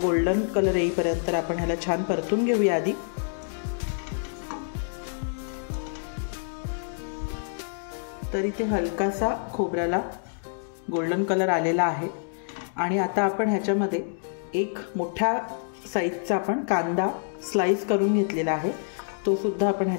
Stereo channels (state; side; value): silent; right; digital silence